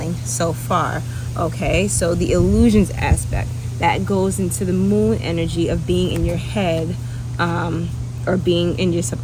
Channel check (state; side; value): identical; both; correlation 1.00